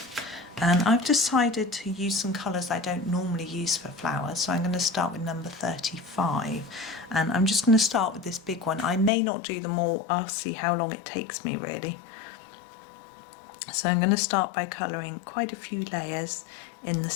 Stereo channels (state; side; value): drops out; right; at 9.1 s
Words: and I've decided to use some colours I don't normally use for flowers, so I'm going to start with number 35, and I'm just going to start with this big one. I may not do them all, I'll see how long it takes me really. So I'm going to start by colouring quite a few layers in the